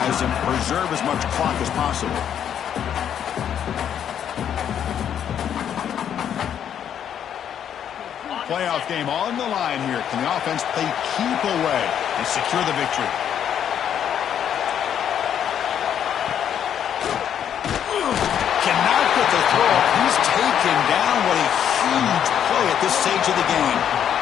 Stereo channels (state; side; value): quieter; right; 9.2 dB